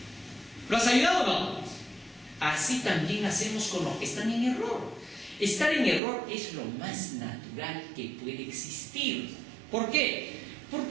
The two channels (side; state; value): left; drops out; at 6.0 s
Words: ¿Lo has ayudado o no? Así también hacemos con los que están en error. Estar en error es lo más natural que puede existir. ¿Por qué?